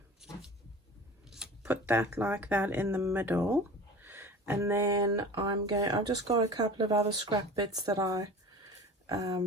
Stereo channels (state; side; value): normal; both; correlation 0.37